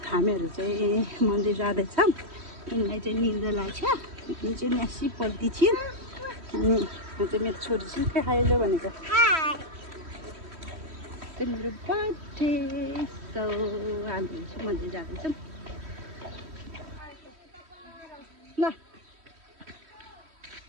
चाहिँ मन्दिर जाँदैछौँ। यिनलाई चाहिँ निद्रा लाग्छ। यिनी चाहिँ न्यासी पल्टी थियो अनि चाहिँ मेरो छोरी चाहिँ खाइलो भनेको चाहिँ मेरो बर्थडे। सो हामीहरू चाहिँ मन्दिर जाँदैछौँ। ल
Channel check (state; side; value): late; left; 3.1 ms